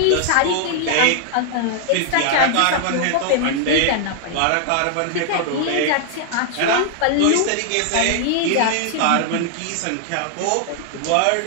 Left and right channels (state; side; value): different; both; correlation 0.00